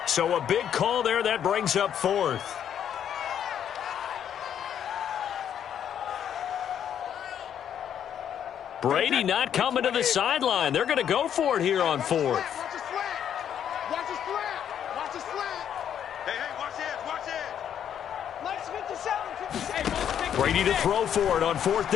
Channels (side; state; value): right; quieter; 9.3 dB